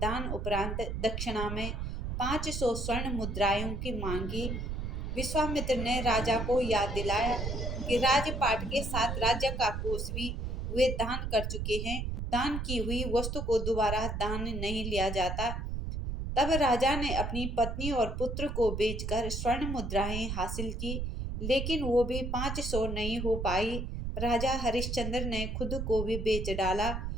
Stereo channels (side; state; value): right; noise; rumble, 3 dB below the sound